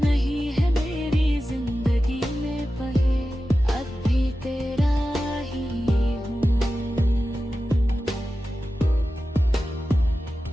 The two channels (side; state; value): both; normal; correlation 0.93